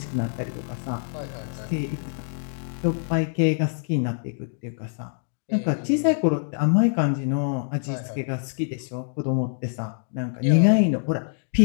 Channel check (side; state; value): right; silent; digital silence